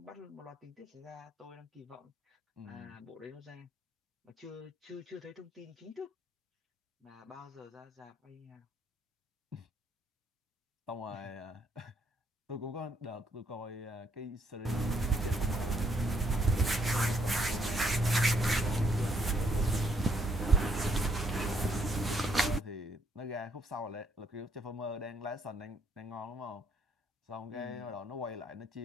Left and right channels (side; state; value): both; normal; correlation 0.71